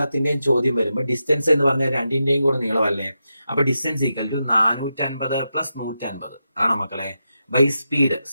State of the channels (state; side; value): inverted; both; correlation -0.88